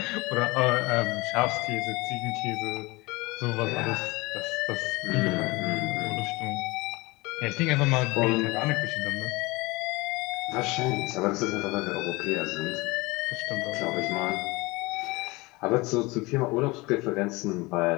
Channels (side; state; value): right; quieter; 23.2 dB